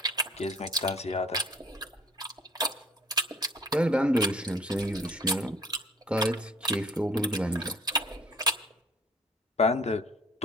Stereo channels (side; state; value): both; normal; correlation 0.53